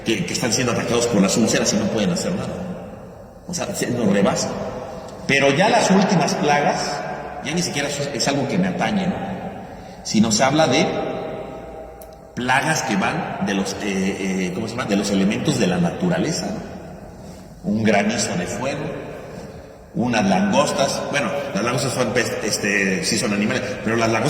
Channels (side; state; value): both; identical; correlation 1.00